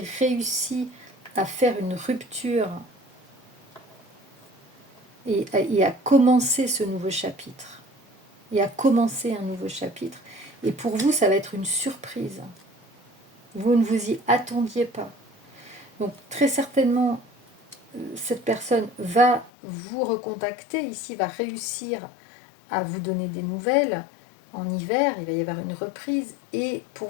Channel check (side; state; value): right; drops out; at 19.5 s